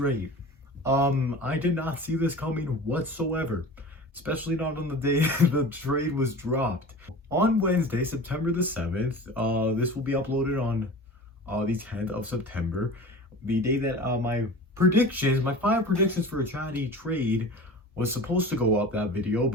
I did not see this coming whatsoever, especially not on the day the trade was dropped. On Wednesday, September the 7th, this will be uploaded on the 10th of September, the day that my 5 predictions for a chatty trade was supposed to go up, that video,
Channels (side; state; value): both; normal; correlation 0.37